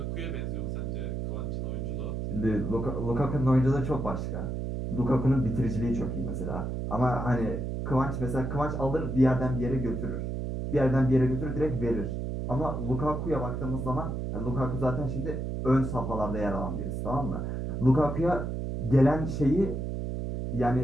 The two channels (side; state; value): right; noise; hum, 3 dB below the sound